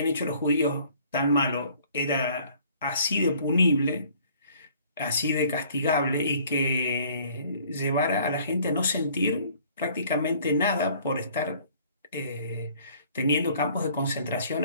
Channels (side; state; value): both; inverted; correlation -0.56